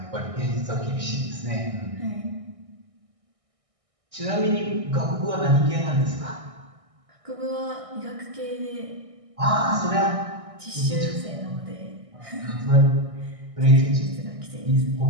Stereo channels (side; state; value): left; late; 1.6 ms